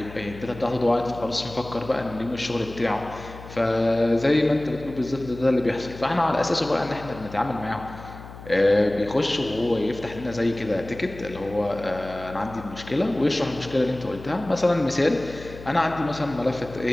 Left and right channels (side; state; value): left; noise; hum, 15 dB below the sound